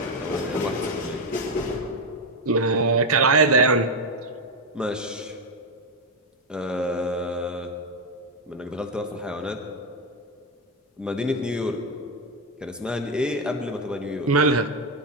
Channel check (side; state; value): both; normal; correlation 0.07